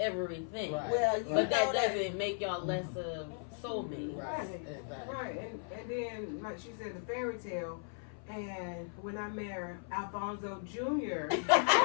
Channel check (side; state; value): right; silent; 54 dB below the other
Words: Right. Well, you But that know doesn't make y'all less of soulmates. Right. Exactly. Right, and then like she said, the fairy tale. And when I married Alfonso Jr.,